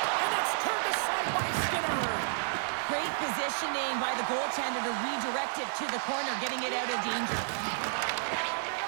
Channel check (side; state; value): left; silent; digital silence